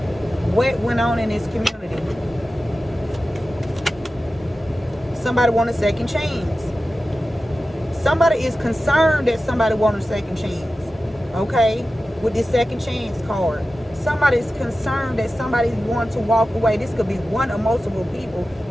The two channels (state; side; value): normal; both; correlation 0.94